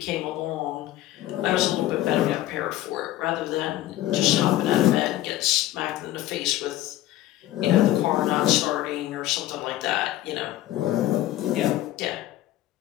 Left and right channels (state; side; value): quieter; right; 14.6 dB